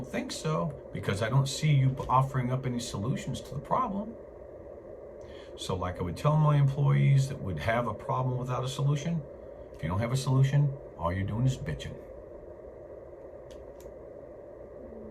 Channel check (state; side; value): identical; both; correlation 1.00